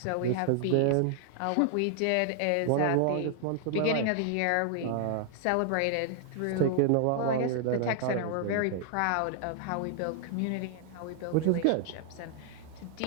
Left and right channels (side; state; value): both; different; correlation 0.00